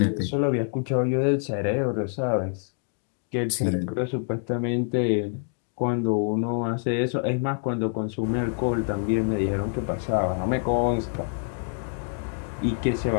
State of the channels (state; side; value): silent; right; 59 dB below the other